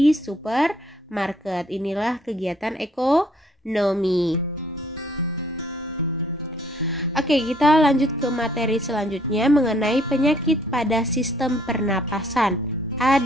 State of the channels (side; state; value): both; normal; correlation 0.62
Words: supermarket. Inilah kegiatan ekonomi. Oke, kita lanjut ke materi selanjutnya mengenai penyakit pada sistem pernapasan.